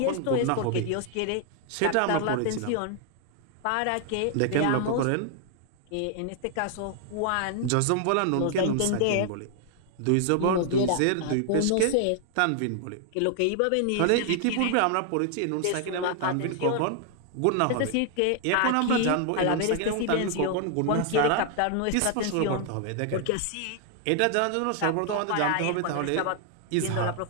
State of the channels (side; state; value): both; different; correlation 0.00